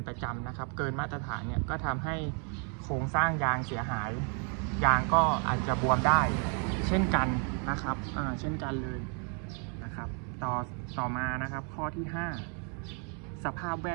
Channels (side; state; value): left; quieter; 39.5 dB